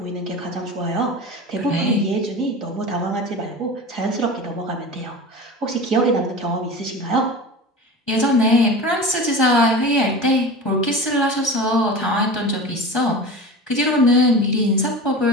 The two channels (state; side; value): normal; both; correlation 0.32